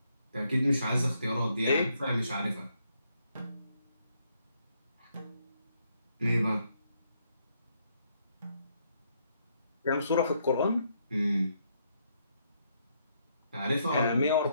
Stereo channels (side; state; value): both; inverted; correlation -0.74